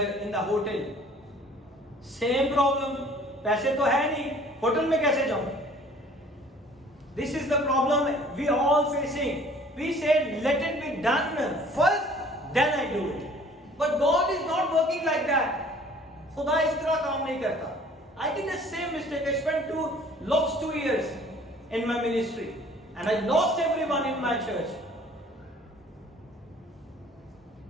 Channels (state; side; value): normal; both; correlation 0.53